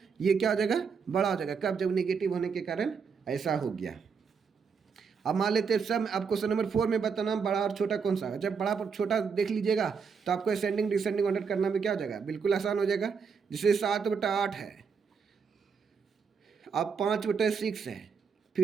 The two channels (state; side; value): quieter; left; 5.9 dB